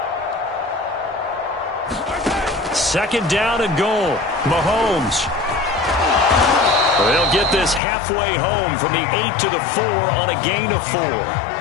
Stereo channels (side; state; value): right; drops out; at 7.8 s